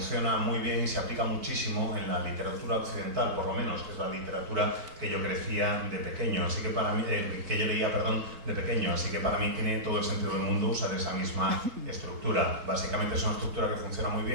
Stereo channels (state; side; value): late; left; 4.2 ms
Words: muy bien y se aplica muchísimo en la literatura occidental, por lo menos, que es la literatura que yo crecía de pequeño, así que para mí, que yo leía, de pequeño, así que para mí tiene todo el sentido del mundo usar esa misma estructura. Básicamente es una estructura que funciona muy